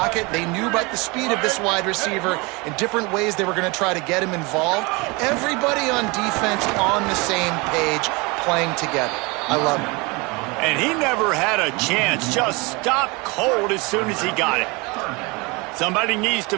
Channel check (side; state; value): left; quieter; 26.7 dB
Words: They knew about the speed of this wide receiver in different ways they were going to try to get him involved. Everybody on defense on the same page, playing together. I love it. And he never had a chance. Just stopped cold as soon as he got it. Somebody needs to